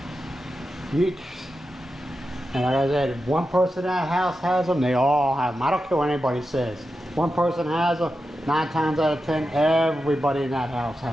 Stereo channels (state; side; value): normal; both; correlation 0.90